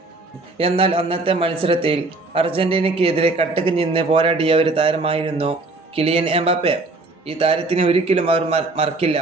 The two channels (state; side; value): quieter; left; 3.2 dB